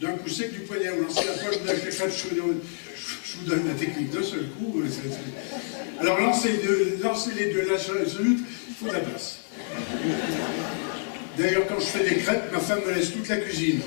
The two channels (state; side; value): silent; right; digital silence